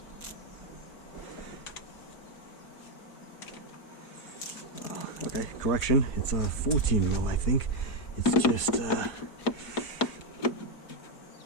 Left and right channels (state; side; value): late; right; 4.7 ms